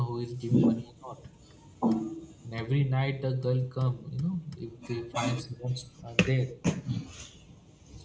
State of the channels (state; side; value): identical; both; correlation 1.00